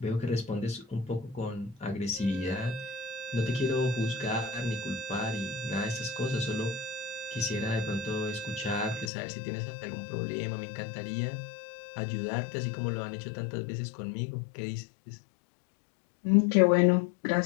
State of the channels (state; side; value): drops out; right; at 9.1 s